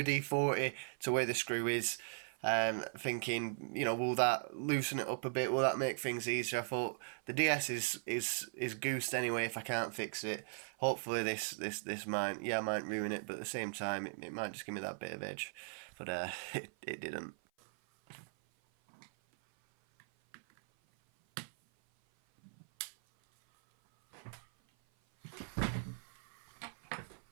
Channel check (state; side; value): silent; left; 52 dB below the other